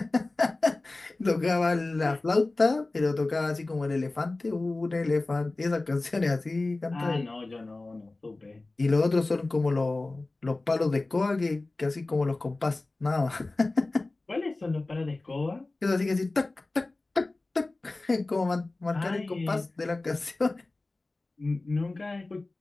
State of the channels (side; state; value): right; quieter; 3.1 dB